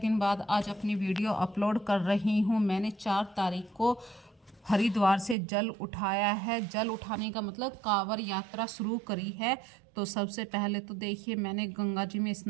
बाद आज अपनी वीडियो अपलोड कर रही हूँ। मैंने 4 तारीख को हरिद्वार से जल उठाया है। जल उठाने का मतलब कांवड़ यात्रा शुरू करी है। तो सबसे पहले तो देखिए, मैंने गंगा जी में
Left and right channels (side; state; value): left; drops out; at 5.4 s